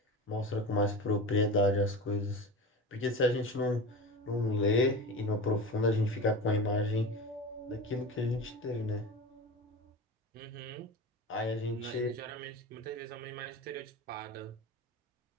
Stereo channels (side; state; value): both; normal; correlation 0.29